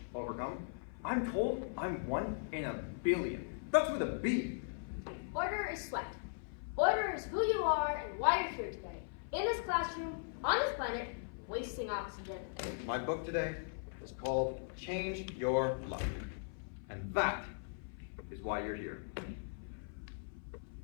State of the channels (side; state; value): right; silent; 52 dB below the other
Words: overcome. I'm told I'm 1 in a billion. That's with a B. Order is sweat. Order is who you are and why you're here today. In this classroom, on this planet, wasting oxygen. My book today is called Change Your Luck. And that is why you're here.